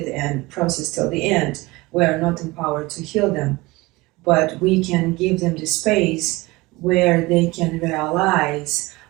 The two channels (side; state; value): left; quieter; 22.0 dB